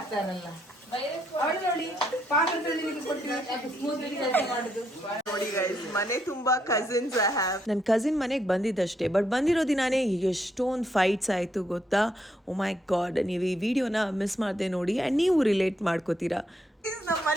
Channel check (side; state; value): both; normal; correlation 0.76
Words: ನೋಡಿ ಗೈಸ್, ಮನೆ ತುಂಬಾ ಕಸಿನ್ಸ್. ನನ್ನ ಕಸಿನ್ ಮನೆಗೆ ಬಂದಿದ್ದಷ್ಟೇ, ಬಟ್ ಬಂದಿರೋ ದಿನಾನೇ ಎಷ್ಟೊಂದು ಫೈಟ್ಸ್ ಆಯಿತು ಗೊತ್ತಾ. ಓ ಮೈ ಗಾಡ್, ನೀವು ಈ ವಿಡಿಯೋನ ಮಿಸ್ ಮಾಡದೆ ನೋಡಿ ಆ್ಯಂಡ್ ನೀವು ರಿಲೇಟ್ ಮಾಡ್ಕೋತೀರಾ. ನಮ್ಮ